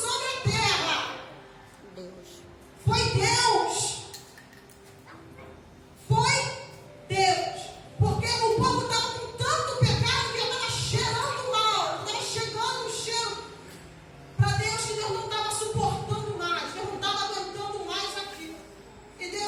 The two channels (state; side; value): identical; both; correlation 1.00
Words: sobre a terra? Deus. Foi Deus. Foi Deus. Porque o povo estava com tanto pecado que estava cheirando mal. Estava chegando um cheiro para Deus que Deus não estava suportando mais.